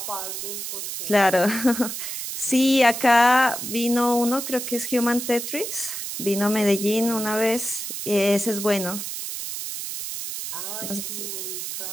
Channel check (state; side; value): noise; right; hiss, 6 dB below the sound